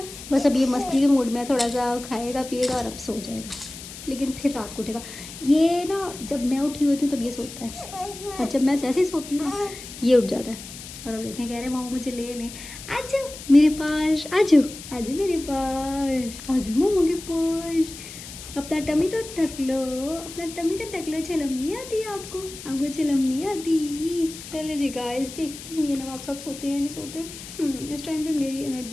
बस अब ये मस्ती के मूड में थोड़ा सा खाएगा पिएगा और अब सो जाएगा, लेकिन फिर रात को उठेगा। ये ना जब मैं उठी होती हूँ तब ये सोता है और जब मैं जैसे ही सोती हूँ ना ये उठ जाता है। और अब देखें कह रहे मामा मुझे ले लें, आ जाओ मेरे पास, आ जाओ आ जाओ मेरे पास, आ जाओ मामा के पास। अपना टमी तो ढक लो, अपना टमी तो ढक लो। चलम नहीं आती आपको? आपको चलम नहीं आती? चले जी गाइस, देखती हूँ ये नवाब साहब सोते हैं नहीं सोते। इस टाइम पे मेरी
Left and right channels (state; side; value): noise; left; hiss, 13 dB below the sound